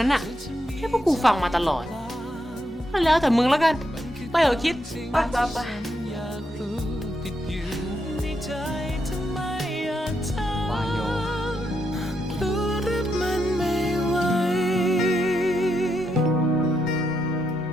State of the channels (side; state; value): both; normal; correlation 0.81